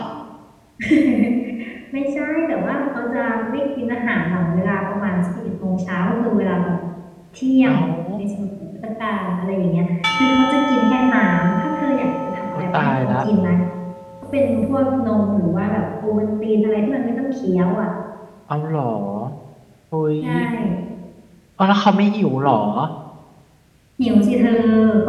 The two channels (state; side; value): identical; both; correlation 1.00